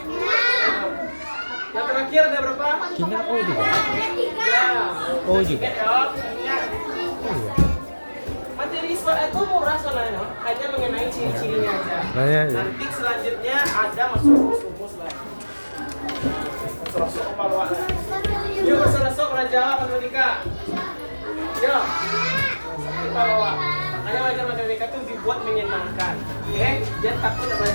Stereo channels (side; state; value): both; inverted; correlation -1.00